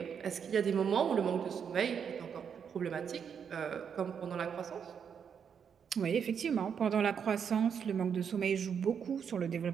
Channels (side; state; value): left; quieter; 7.3 dB